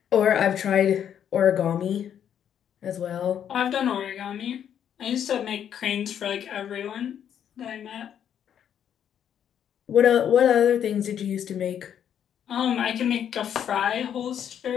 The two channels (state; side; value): quieter; right; 9.2 dB